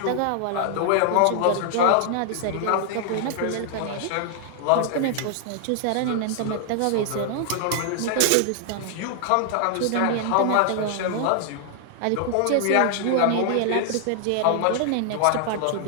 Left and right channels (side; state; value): both; different; correlation 0.00